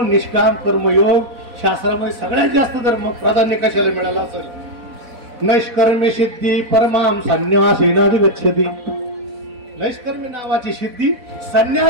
निष्काम कर्मयोग शास्त्रामध्ये सगळ्यात जास्त धर्म प्राधान्य कशाला मिळालं असेल? नैष्कर्मी सिद्धी परमाम संन्यासेनाधिगच्छति. नैष्कर्मी नावाची सिद्धी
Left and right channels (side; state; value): left; late; 4.1 ms